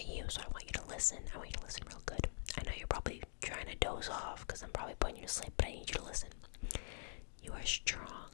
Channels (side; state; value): right; silent; digital silence